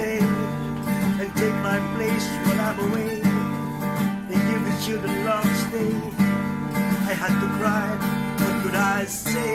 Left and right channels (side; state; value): both; identical; correlation 1.00